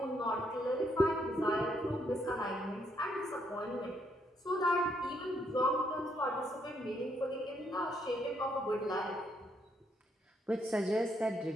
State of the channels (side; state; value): both; normal; correlation 0.74